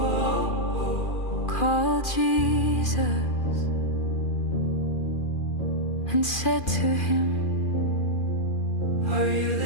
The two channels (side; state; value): right; late; 2.4 ms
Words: called Jesus, and said to him, "Are you